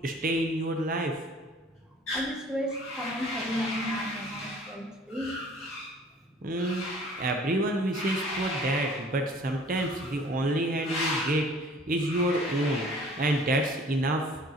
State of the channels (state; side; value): normal; both; correlation 0.51